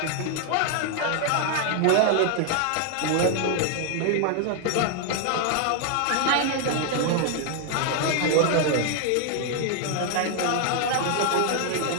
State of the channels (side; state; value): both; different; correlation 0.00